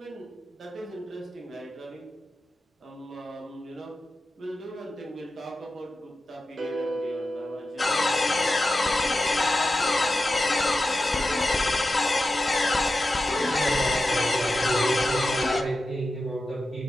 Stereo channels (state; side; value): normal; both; correlation 0.92